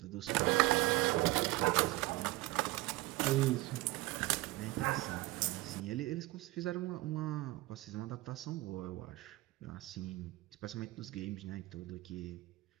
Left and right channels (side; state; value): left; quieter; 19.8 dB